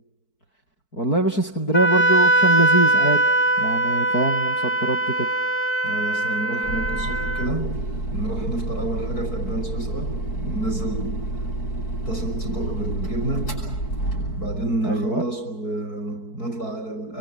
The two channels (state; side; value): late; right; 4.6 ms